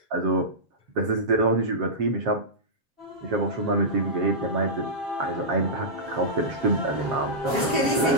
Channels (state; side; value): late; left; 7.2 ms